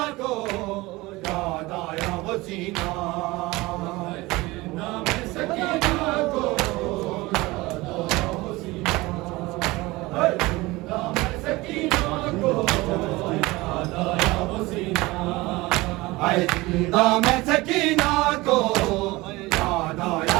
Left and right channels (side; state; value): left; quieter; 21.0 dB